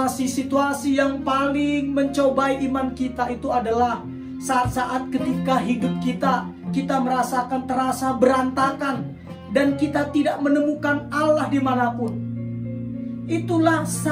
yang paling mencobai iman kita itu adalah saat-saat ketika hidup kita merasakan terasa berantakan dan kita tidak menemukan Allah dimanapun. Itulah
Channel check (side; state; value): both; identical; correlation 1.00